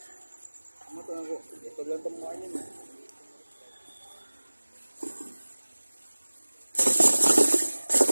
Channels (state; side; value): inverted; both; correlation -1.00